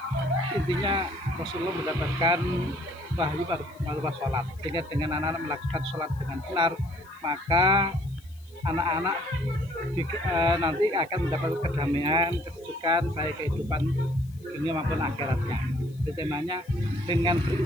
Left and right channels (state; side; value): noise; left; hiss, 28 dB below the sound